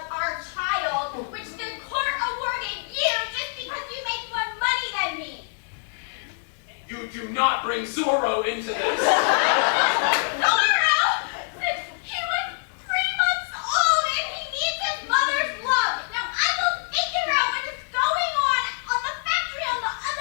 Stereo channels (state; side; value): silent; right; digital silence